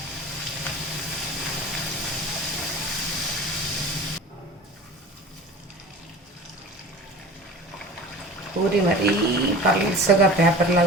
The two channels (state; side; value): normal; both; correlation 0.38